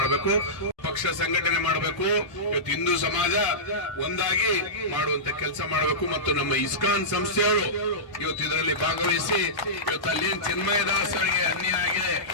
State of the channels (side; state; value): right; late; 1.1 ms